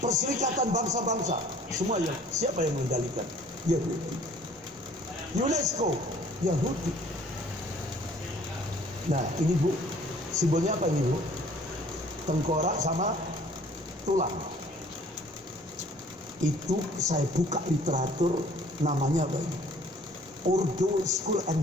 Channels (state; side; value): normal; both; correlation 0.55